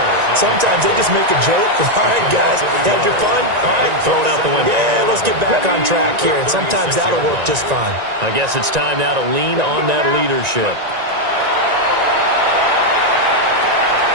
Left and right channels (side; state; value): left; late; 1.9 ms